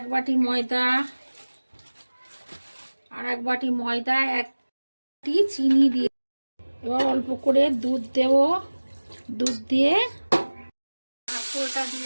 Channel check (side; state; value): both; inverted; correlation -1.00